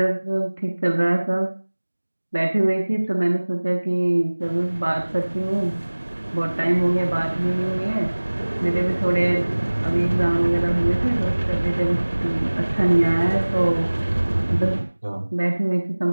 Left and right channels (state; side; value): inverted; both; correlation -1.00